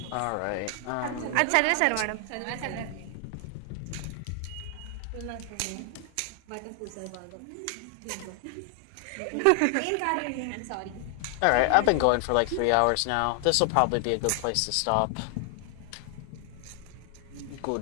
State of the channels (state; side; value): different; both; correlation 0.00